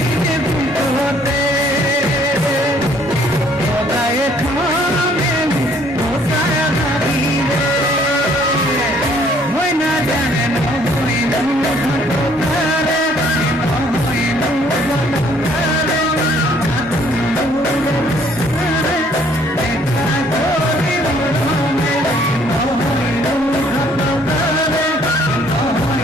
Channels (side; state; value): both; normal; correlation 0.62